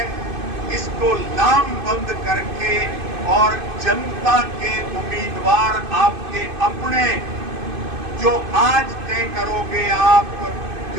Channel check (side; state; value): left; late; 2.5 ms